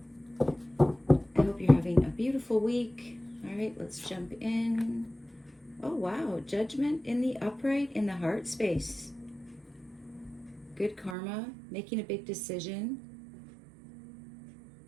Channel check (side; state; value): left; drops out; at 11.2 s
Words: I hope you're having a beautiful week. All right, let's jump in. Oh, wow. Judgment in the upright in the heart space. Good karma, making a big decision.